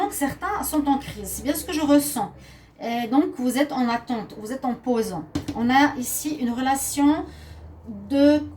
que certains sont en crise. C'est bien ce que je ressens. Et donc, vous êtes en attente, vous êtes en pause. On a ici une relation...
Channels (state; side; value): identical; both; correlation 1.00